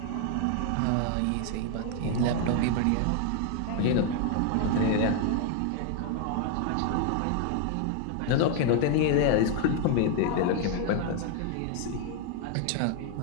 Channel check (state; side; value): different; both; correlation 0.00